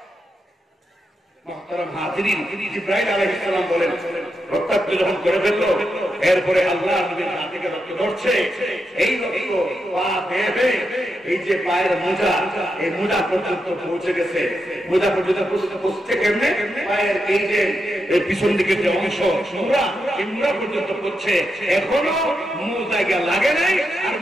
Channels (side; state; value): both; normal; correlation 0.85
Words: জিবরাইল আলাইহিস সালাম বলেন রক্তাক্ত যখন করে ফেললো, এরপরে আল্লাহ নবীর হাত থেকে রক্ত ধরছে, এই রক্ত পা বেয়ে এই যে পায়ের মোজা, এই মোজা পর্যন্ত পৌঁছে গেছে। মোজা পর্যন্ত পৌঁছছে কেমনে? পায়ের এই যে পিছন দিকের যে অংশ মুড়া, এই মুড়া পর্যন্ত পড়ছে। এখনো মোজায় লাগে নাই, আর